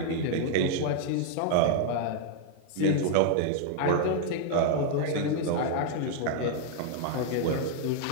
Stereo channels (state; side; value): different; both; correlation 0.00